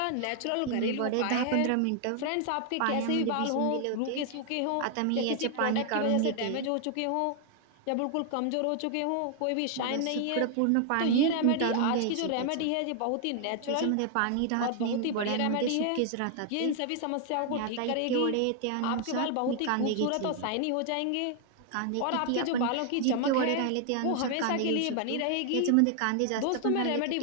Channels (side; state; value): both; different; correlation 0.00